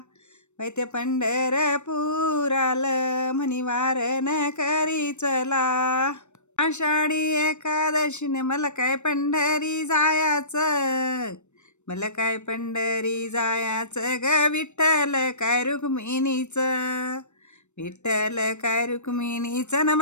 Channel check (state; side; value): late; right; 0.83 ms